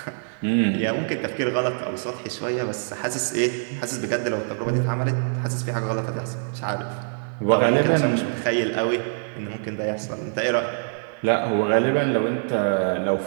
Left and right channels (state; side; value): silent; left; digital silence